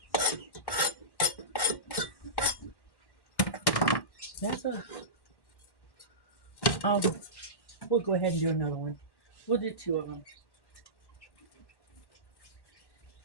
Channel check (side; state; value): right; late; 1.1 ms